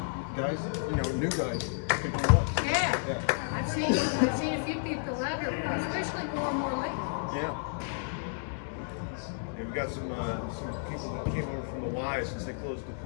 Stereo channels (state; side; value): silent; right; digital silence